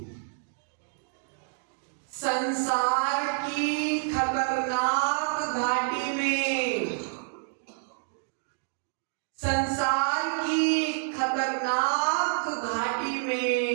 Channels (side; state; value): left; silent; digital silence